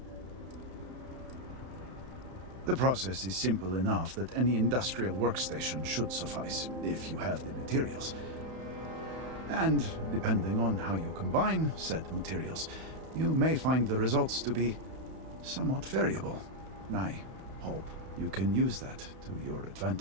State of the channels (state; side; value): late; left; 31 ms